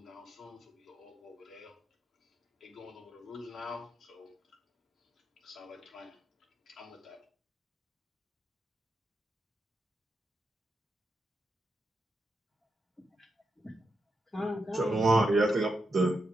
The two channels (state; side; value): normal; both; correlation 0.85